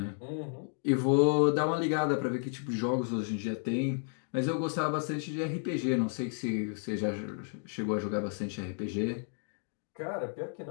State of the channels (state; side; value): silent; right; 56 dB below the other